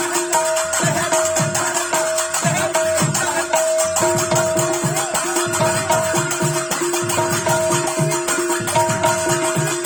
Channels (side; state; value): both; identical; correlation 1.00